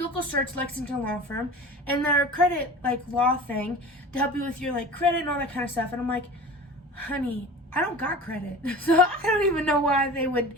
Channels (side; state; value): both; normal; correlation 0.37